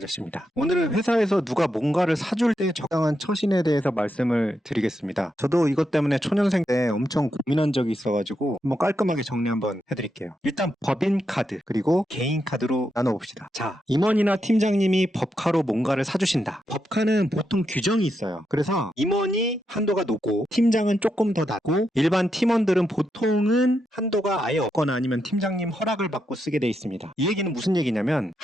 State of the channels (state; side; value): normal; both; correlation 0.83